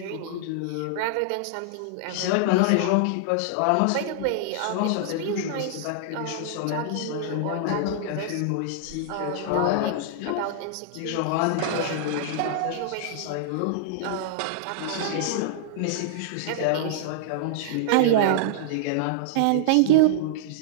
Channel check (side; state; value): both; different; correlation -0.01